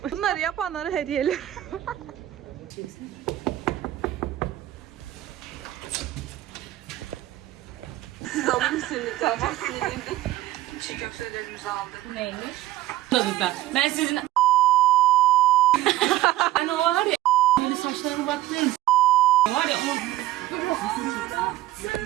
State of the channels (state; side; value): quieter; left; 15.4 dB